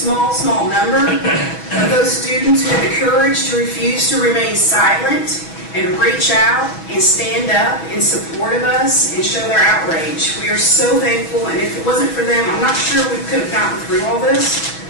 number of those students who had the courage to refuse to remain silent and reach out and stand up in support of us and show their outrage. We are so thankful, and if it wasn't for them, I'm not sure we could have gotten through all this.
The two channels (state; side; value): late; right; 6.2 ms